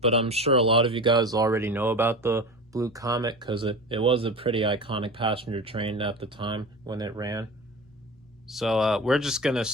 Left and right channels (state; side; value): normal; both; correlation 0.30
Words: I'm sure a lot of you guys already know about the Blue Comet because it was a pretty iconic passenger train at the time when it ran. So we're just going to